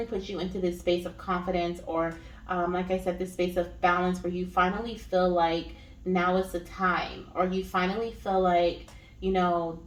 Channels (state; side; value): identical; both; correlation 1.00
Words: puts you into this space of confidence, or like I said, this space of balance, where you finally feel like now is the time, or you finally feel like, you know,